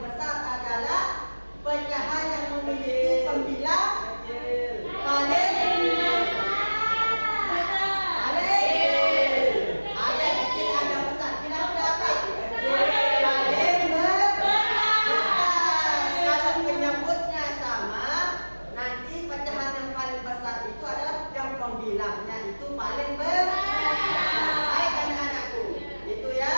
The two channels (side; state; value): both; inverted; correlation -1.00